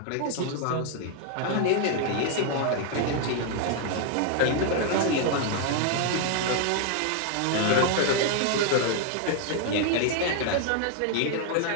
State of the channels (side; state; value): both; different; correlation 0.00